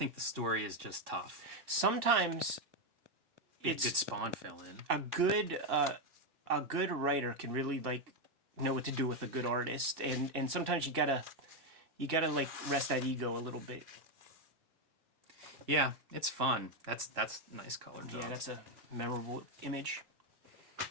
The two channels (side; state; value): left; late; 2.5 ms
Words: the story is just tough. Sometimes it's good spawn fill in. A good writer can really like know what to do with a good artist, and sometimes you gotta like rest that ego a little bit. Yeah, it's fun. That's nice color job. Yeah, that's a memorable image.